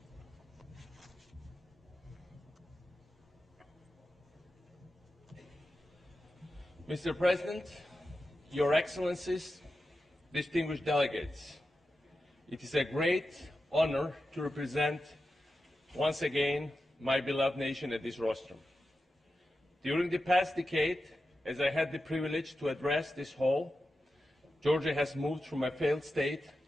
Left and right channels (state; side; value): normal; both; correlation 0.91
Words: Mr. President, Your Excellencies, distinguished delegates, it is a great honor to represent once again my beloved nation at this rostrum. During the past decade, as I had the privilege to address this hall, Georgia has moved from a failed state